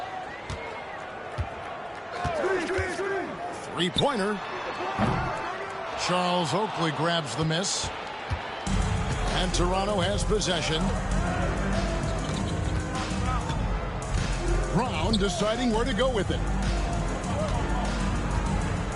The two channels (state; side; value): identical; both; correlation 1.00